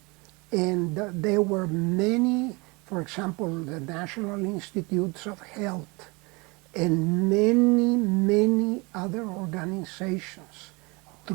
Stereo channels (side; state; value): left; quieter; 27.2 dB